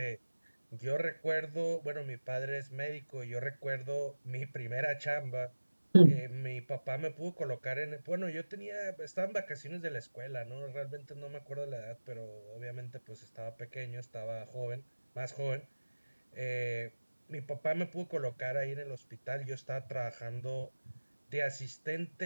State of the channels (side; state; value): both; inverted; correlation -1.00